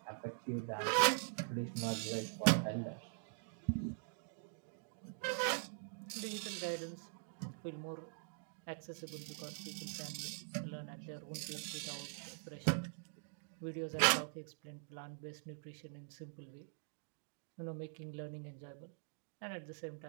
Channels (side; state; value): left; silent; digital silence